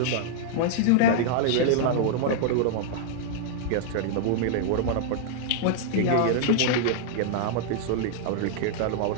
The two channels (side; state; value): both; different; correlation -0.01